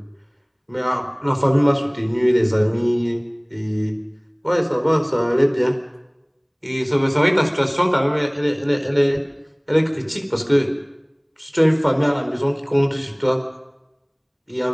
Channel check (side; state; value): both; identical; correlation 1.00